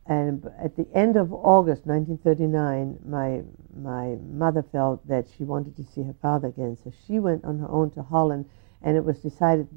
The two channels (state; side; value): silent; left; digital silence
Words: at the end of August 1939, my mother felt that she wanted to see her father again, so she went on her own to Holland, and it was decided